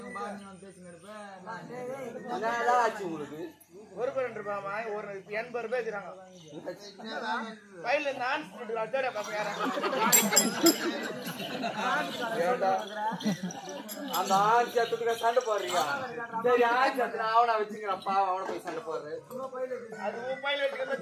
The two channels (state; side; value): identical; both; correlation 1.00